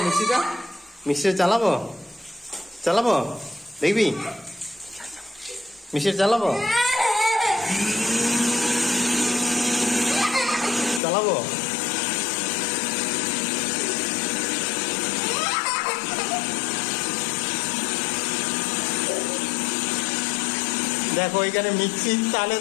মিক্সিটা, মিক্সিটা চালাবো, চালাবো দেখবি মিক্সিটা চালাবো, চালাবো। দেখো এখানে মিক্সির তালে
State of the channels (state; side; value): drops out; right; at 11.0 s